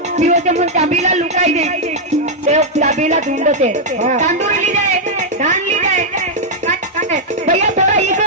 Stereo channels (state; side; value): normal; both; correlation -0.03